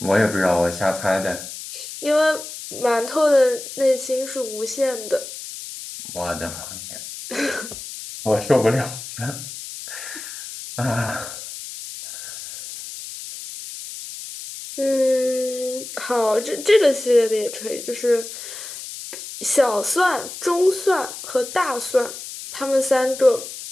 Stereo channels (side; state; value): left; noise; hiss, 11 dB below the sound